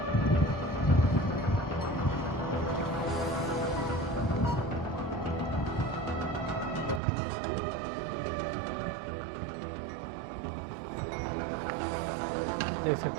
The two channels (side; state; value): left; drops out; at 7.0 s